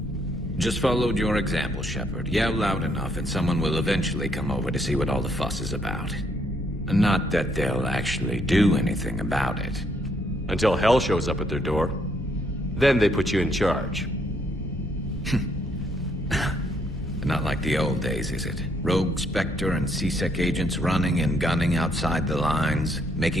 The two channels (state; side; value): normal; both; correlation 0.71